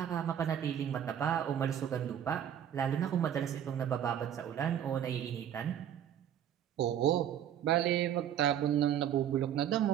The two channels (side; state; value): left; quieter; 9.9 dB